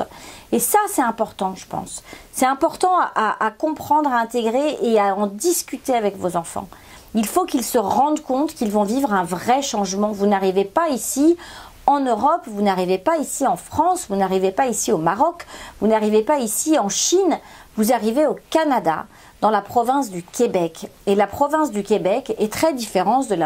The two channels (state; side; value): identical; both; correlation 1.00